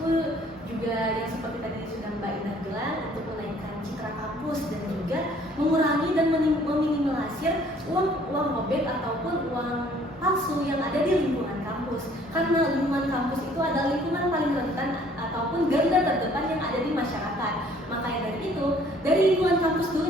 juga yang seperti tadi sudah Mbak Indah bilang, untuk menaikkan citra kampus dan juga mengurangi dan meminimalisir uang robek ataupun uang palsu yang ada di lingkungan kampus. Karena lingkungan kampus itu adalah lingkungan paling rentan ataupun garda terdepan yang ada di masyarakat. Makanya dari itu, dari lingkungan kampus dulu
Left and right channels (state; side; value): normal; both; correlation 0.58